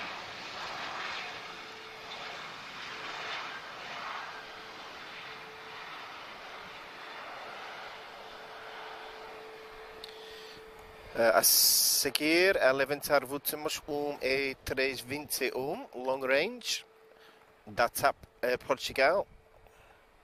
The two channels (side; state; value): both; identical; correlation 1.00